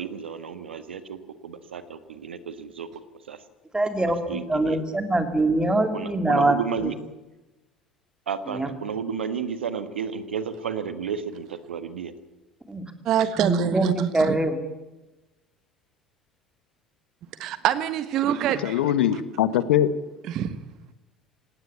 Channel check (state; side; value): normal; both; correlation 0.43